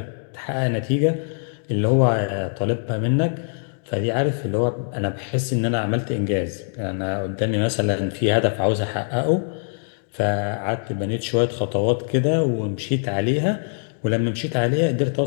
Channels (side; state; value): right; silent; digital silence